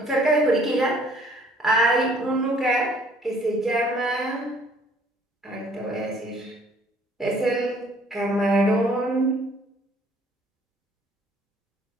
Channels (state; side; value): normal; both; correlation 0.59